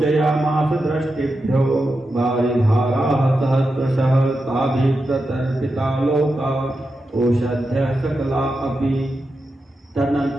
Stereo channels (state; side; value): normal; both; correlation 0.89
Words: दृष्टिभ्यो वारिधाराः सहस्रशः ताभिः प्रतर्पिता लोका ओषध्यः सकला अपि।